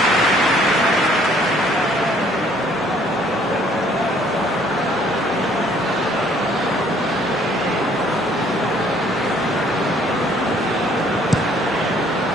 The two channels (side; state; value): both; normal; correlation 0.61